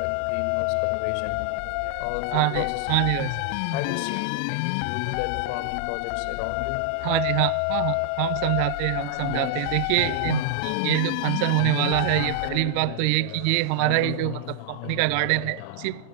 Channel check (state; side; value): different; both; correlation 0.00